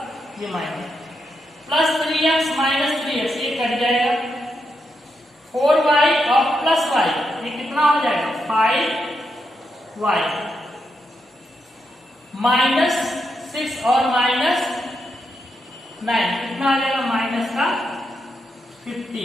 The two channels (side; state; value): both; normal; correlation 0.83